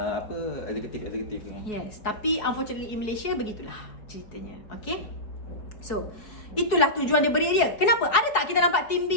eksekutif. Yes, tapi unfortunately in Malaysia begitulah ceritanya. Okay, So, itulah tujuan dia beri dia. Kenapa? Ada tak kita nampak team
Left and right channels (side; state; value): right; late; 4.7 ms